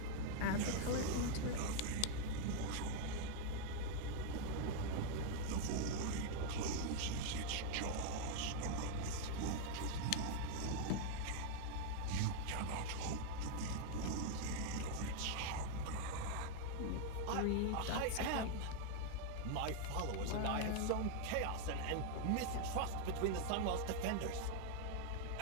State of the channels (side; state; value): both; different; correlation 0.00